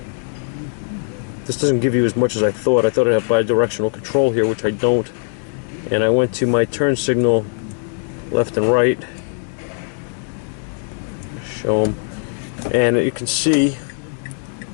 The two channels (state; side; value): silent; right; 57 dB below the other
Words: This doesn't give you as much as I thought. I thought I'd have bi-directional control here, which I don't. And I went to my turn signal left and right. Show them. And you can see